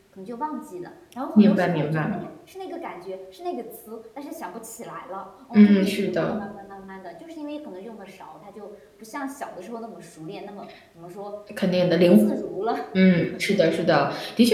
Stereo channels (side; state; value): both; identical; correlation 1.00